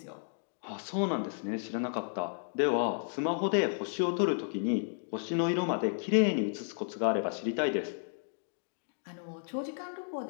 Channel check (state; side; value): silent; right; digital silence